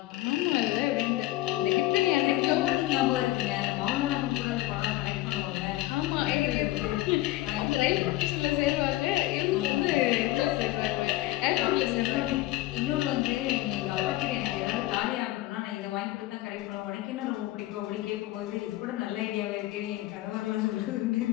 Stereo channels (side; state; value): right; quieter; 17.0 dB